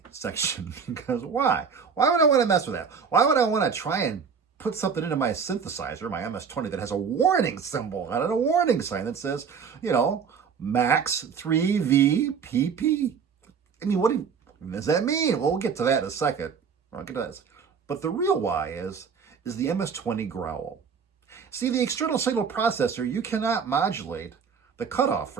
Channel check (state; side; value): quieter; left; 6.2 dB